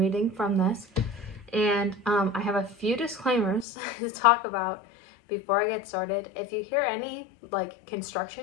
from this, and I have a few disclaimers to talk about before I get started. If you hear any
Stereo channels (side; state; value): right; drops out; at 3.7 s